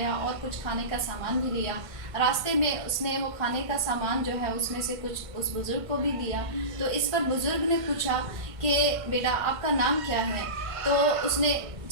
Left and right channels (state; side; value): late; left; 1.5 ms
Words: اور کچھ کھانے کا سامان بھی لیا۔ راستے میں اس نے وہ کھانے کا سامان جو ہے اس میں سے کچھ اس بزرگ کو بھی دیا۔ تو اس پر بزرگ نے پوچھا کہ بیٹا آپ کا نام کیا ہے؟ تو اس نے